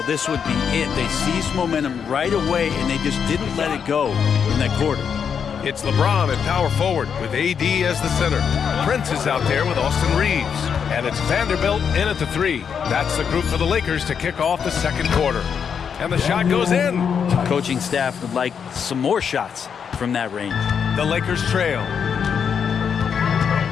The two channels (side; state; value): right; quieter; 7.1 dB